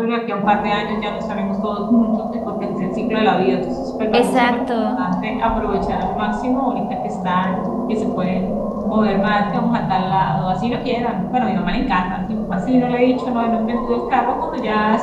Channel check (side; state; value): both; identical; correlation 1.00